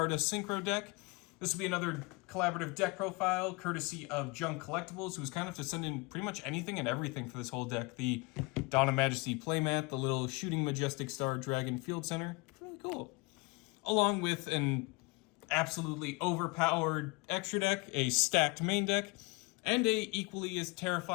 Synchro deck. This will be another collaborative deck profile, courtesy of Junk Collectibles, who's kind of to send in pretty much anything and everything for this whole deck. The Dawn of Majesty playmat, the little shooting Majestic Star Dragon Field Center. Really cool. Along with an absolutely overpowered extra deck, a stacked main deck, and a equally as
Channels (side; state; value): right; quieter; 27.4 dB